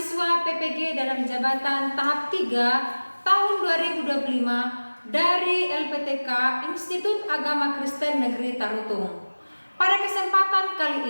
PPG dalam jabatan tahap 3 tahun 2025 dari LPTK Institut Agama Kristen Negeri Tarutung. Pada kesempatan kali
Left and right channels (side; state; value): both; inverted; correlation -1.00